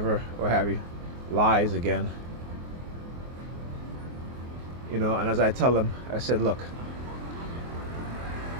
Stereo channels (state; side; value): late; left; 24 ms